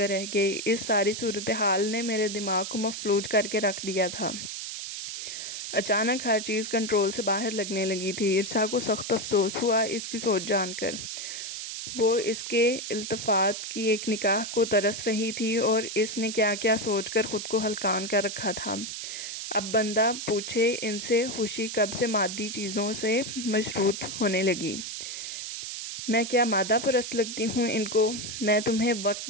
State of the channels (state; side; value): noise; right; hiss, 6 dB below the sound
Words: اس ساری صورتحال نے میرے دماغ کو مفلوج کر کے رکھ دیا تھا۔ اچانک ہر چیز کنٹرول سے باہر لگنے لگی تھی۔ ارسا کو سخت افسوس ہوا اس کی سوچ جان کر۔ وہ اس کے التفات کی ایک نگاہ کو ترس رہی تھی اور اس نے کیا کیا سوچ کر خود کو ہلکان کر رکھا تھا۔ اب بندہ پوچھے ان سے خوشی کب سے مادی چیزوں سے مشروط ہونے لگی؟ میں کیا مادہ پرست لگتی ہوں ان کو؟ میں تمہیں وقت